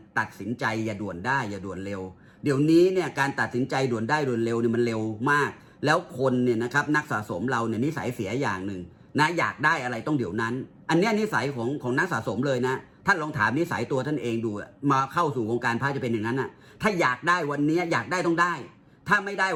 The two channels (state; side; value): identical; both; correlation 1.00